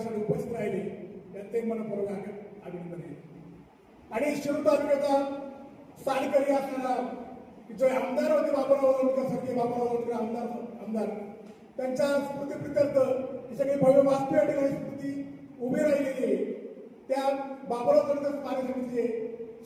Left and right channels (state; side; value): identical; both; correlation 1.00